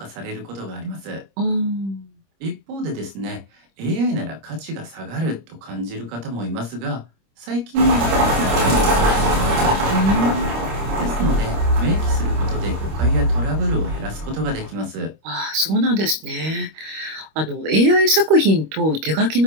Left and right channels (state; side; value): late; left; 26 ms